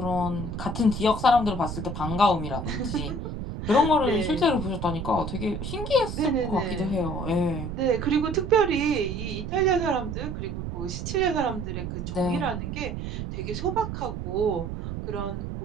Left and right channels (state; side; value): noise; right; rumble, 5 dB below the sound